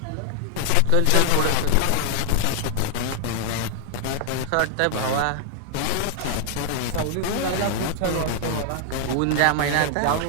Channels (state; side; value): different; both; correlation 0.00